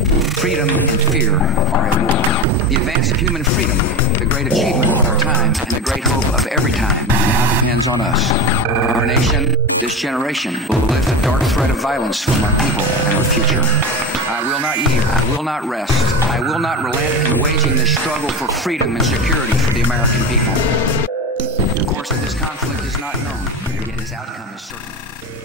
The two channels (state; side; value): normal; both; correlation 0.23